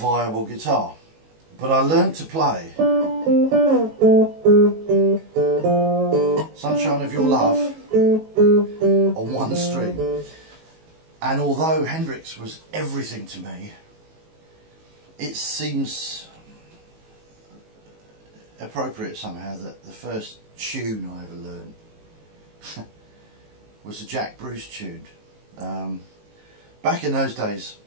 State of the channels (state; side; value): late; left; 19 ms